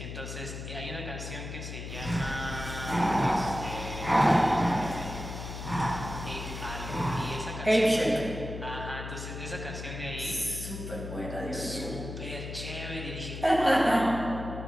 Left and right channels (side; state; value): left; noise; hum, 8 dB below the sound